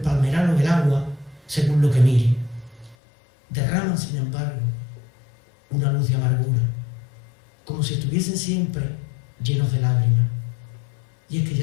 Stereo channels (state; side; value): drops out; right; at 3.0 s